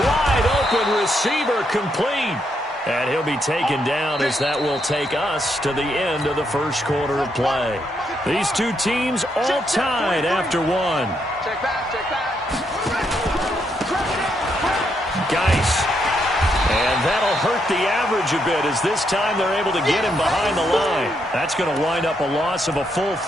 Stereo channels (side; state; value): both; normal; correlation 0.78